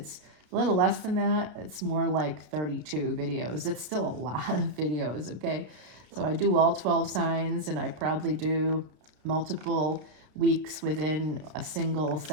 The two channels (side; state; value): left; late; 32 ms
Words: a little less than that. It's more like 32 videos. It's still a lot of videos, okay? So I do all 12 signs, and I probably do multiple weeks within a single